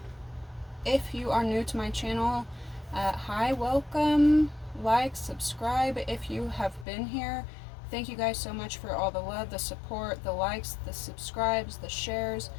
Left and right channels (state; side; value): drops out; right; at 6.9 s